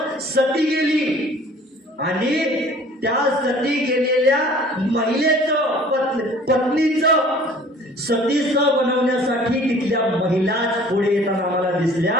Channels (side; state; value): both; normal; correlation 0.50